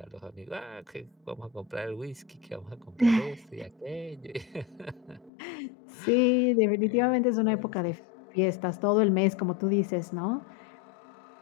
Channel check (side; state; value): right; drops out; at 5.3 s